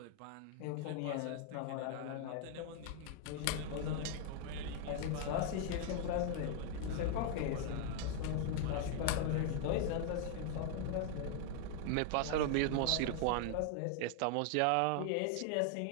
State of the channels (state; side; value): different; both; correlation 0.00